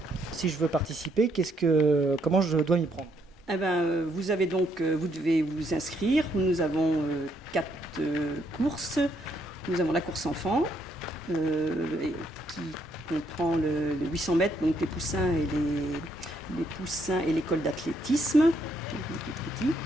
Si je veux participer, comment je dois m'y prendre ? Eh ben, vous devez vous inscrire. Nous avons 4 courses. Nous avons la course enfant, qui comprend le 800 mètres, donc les poussins et l'école d'athlétisme, les petits.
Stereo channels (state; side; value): normal; both; correlation 0.73